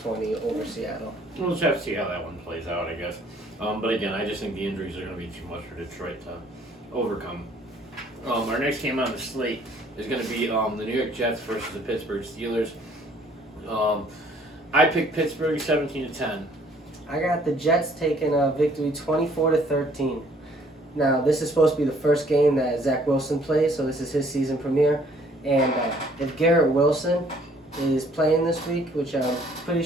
over Seattle. We'll just have to see how that one plays out, I guess. But again, I just think the injuries are going to be too much for Detroit to overcome. Our next game on the slate is going to be the New York Jets versus the Pittsburgh Steelers. I picked Pittsburgh 17-10. I got the Jets taking a victory 24-13. Now, this is supposed to be the first game that Zach Wilson plays, so this is his season premiere. And if Garrett Wilson is playing this week, which I'm pretty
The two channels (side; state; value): both; normal; correlation 0.60